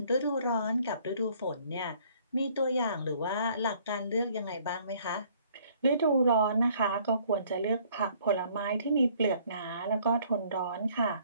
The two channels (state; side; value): inverted; both; correlation -0.60